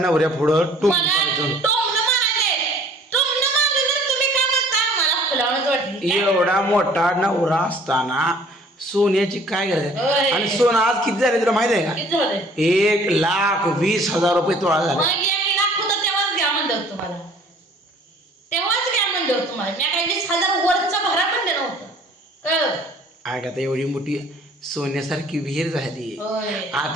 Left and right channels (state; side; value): normal; both; correlation 0.53